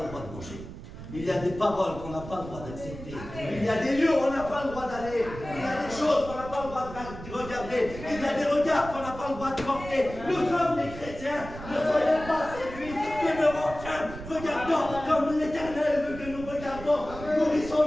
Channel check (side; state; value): right; noise; rumble, 12 dB below the sound